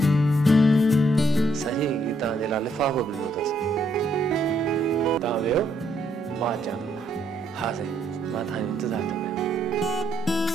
सही ही तव्हांजे लाइ लिफ़ाफ़ो बि ॾिनो अथसि तव्हां वियो मां अचां थो हा साईं मां तव्हांजो इंतज़ारु थो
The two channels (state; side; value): normal; both; correlation 0.72